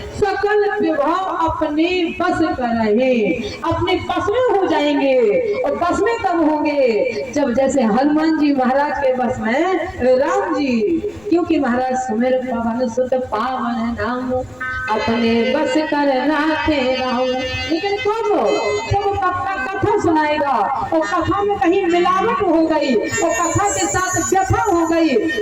सकल विभव अपने बस कर रहे, अपने बस में हो जाएंगे। और बस में कब होंगे? जब जैसे हनुमान जी महाराज के बस में राम जी, क्योंकि महाराज सुमेर पवन सुत पावन नाम अपने बस कर राखे राम। लेकिन कब? जब कथा सुनाएगा और कथा में कहीं मिलावट हो गई और कथा के साथ व्यथा हो गई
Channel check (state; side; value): noise; left; rumble, 28 dB below the sound